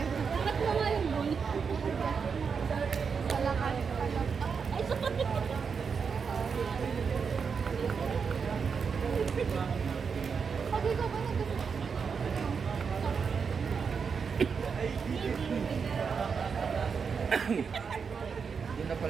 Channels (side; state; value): left; quieter; 5.9 dB